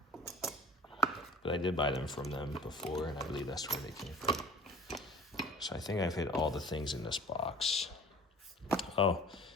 but I did buy them from them before, and I believe that's where they came from. So I think I've hit all the things in this box. Oh,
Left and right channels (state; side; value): normal; both; correlation 0.45